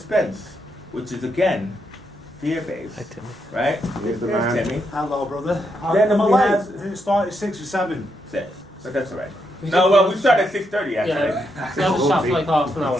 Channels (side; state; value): both; normal; correlation 0.80